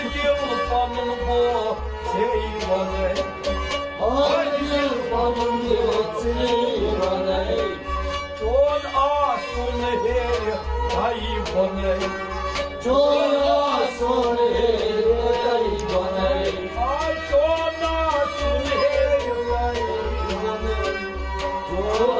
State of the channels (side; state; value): both; identical; correlation 1.00